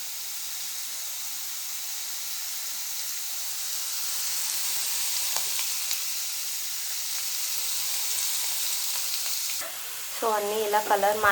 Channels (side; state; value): both; identical; correlation 1.00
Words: సో అన్నీ ఇలా కలర్